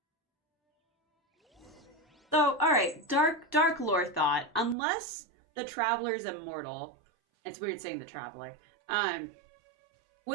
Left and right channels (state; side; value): drops out; left; at 4.8 s